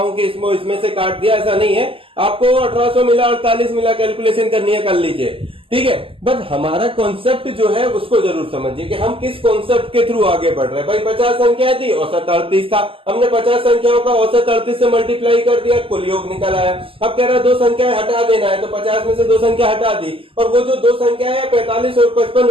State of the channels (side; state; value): left; late; 0.26 ms